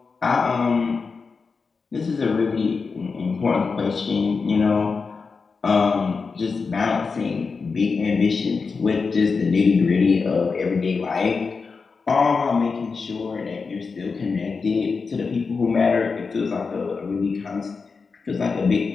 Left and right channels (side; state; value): right; quieter; 4.8 dB